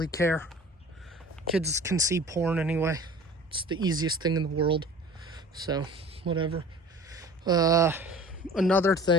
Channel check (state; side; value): normal; both; correlation 0.43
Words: care. Kids can see porn anyway. It's the easiest thing in the world. So, whatever. Another